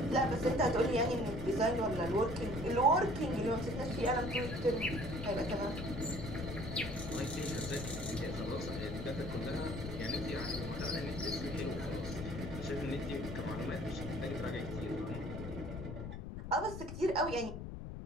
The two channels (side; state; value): left; noise; rumble, 7 dB below the sound